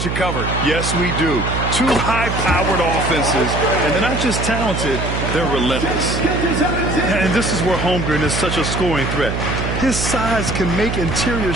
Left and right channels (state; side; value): noise; right; hum, 3 dB below the sound